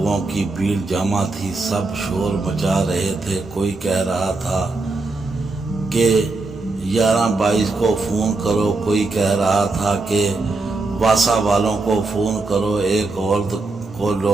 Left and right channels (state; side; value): quieter; left; 3.5 dB